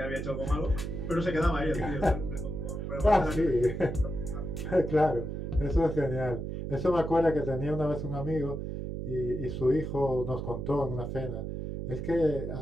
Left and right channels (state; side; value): noise; right; hum, 5 dB below the sound